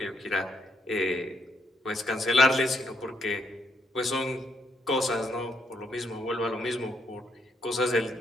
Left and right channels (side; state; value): both; normal; correlation 0.75